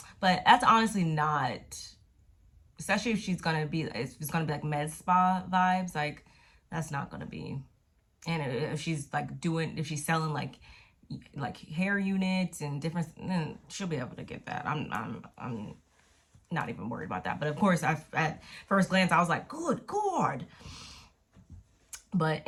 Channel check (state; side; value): identical; both; correlation 1.00